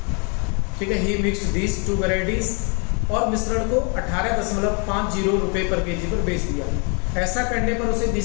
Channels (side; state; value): right; quieter; 35.4 dB